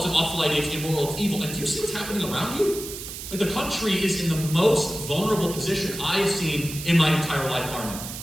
an awful idea, it's immoral, it's evil. And do you see what's happening around you? Like, the country is in the most vulnerable position I have seen in my entire life, Arnold.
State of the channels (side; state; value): right; noise; hiss, 9 dB below the sound